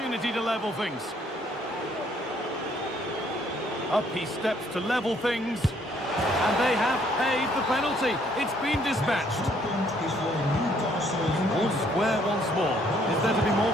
to level things. Up he steps to level things. And they have paid the penalty. It's been dispatched. All square once more. Is there to be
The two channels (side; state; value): both; normal; correlation 0.65